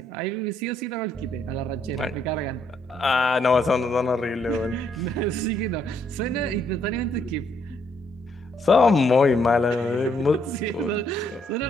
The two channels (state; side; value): normal; both; correlation 0.72